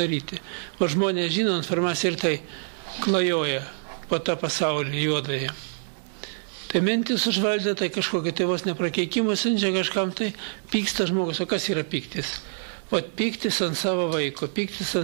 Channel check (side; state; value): left; silent; digital silence